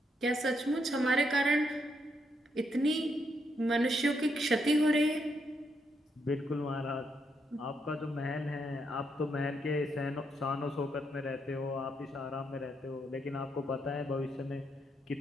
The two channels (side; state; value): both; normal; correlation 0.78